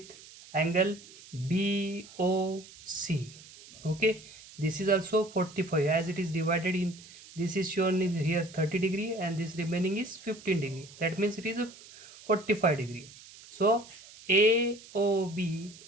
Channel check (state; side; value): noise; right; hiss, 20 dB below the sound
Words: angle BOC. Okay, this is also 45, as it is divided in, this is shown in here 30 degree and this remaining is 15 degree. That means it is a 45 degree. So AOB